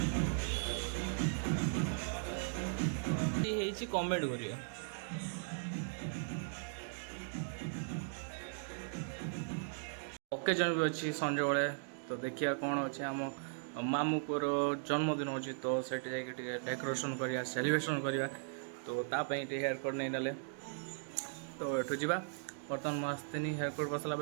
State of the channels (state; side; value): silent; left; digital silence